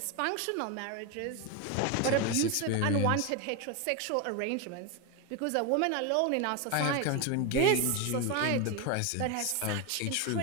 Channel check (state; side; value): different; both; correlation 0.02